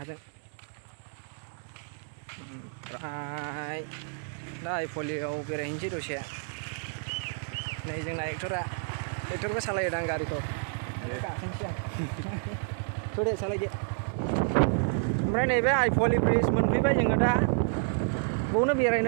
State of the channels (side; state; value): left; silent; 58 dB below the other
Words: ओमफ्राय दा आइफवालियाव बेरायहैनोसै दसे नै जोंना एक्टरबो सालायदां गारिखौ गाखोनोसै आं थ'दे सालायदो ओमफ्राय नैबे आइफवालि ब्रिज मोनफैबाय जोङो दा बावनो